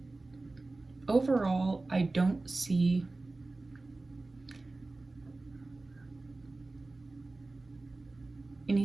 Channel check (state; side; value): quieter; left; 3.2 dB